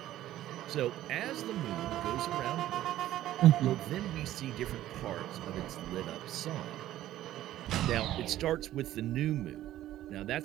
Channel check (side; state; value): left; quieter; 13.6 dB